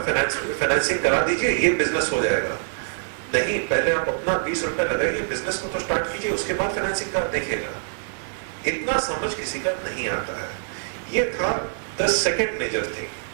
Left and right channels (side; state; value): left; silent; digital silence